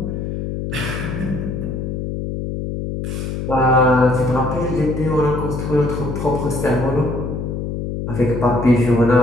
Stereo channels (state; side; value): noise; left; hum, 4 dB below the sound